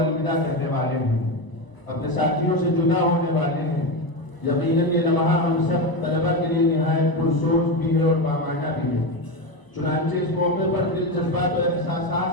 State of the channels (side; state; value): right; late; 1.0 ms